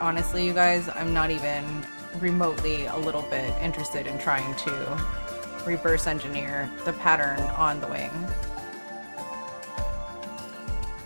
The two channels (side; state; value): both; inverted; correlation -1.00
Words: Honestly, you guys, I'm not even remotely a little bit interested in trying to reverse engineer the pattern on the wing.